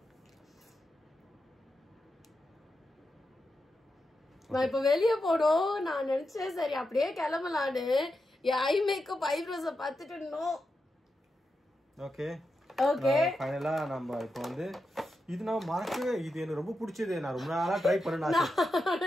நான் இப்ப வெளியே போனோம். நான் நினைச்சேன் சரி அப்படியே கிளம்பலான்னு. ஐ மேக்கப் ஐப்ரோஸ பார்த்துட்டு நோ. Okay okay. ஃபைனலா நம்ம இப்போ வந்து இது நான் மறக்கவே இது எனக்கு ரொம்ப பிடிச்சது. நான் ரொம்ப நாளா ட்ரை பண்ணேன்.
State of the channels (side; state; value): both; normal; correlation 0.88